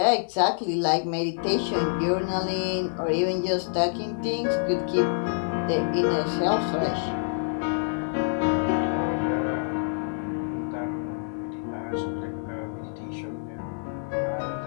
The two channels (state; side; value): silent; right; digital silence